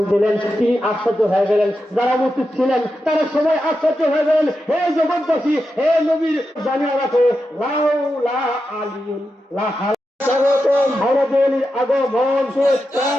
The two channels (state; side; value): normal; both; correlation 0.89